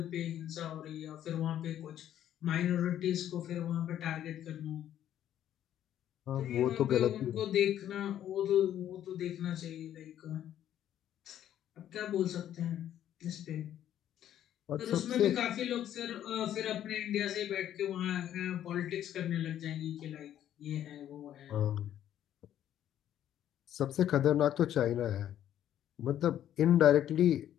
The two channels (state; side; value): quieter; right; 11.1 dB